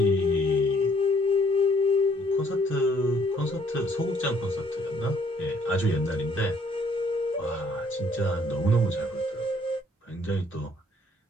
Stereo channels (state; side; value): normal; both; correlation 0.64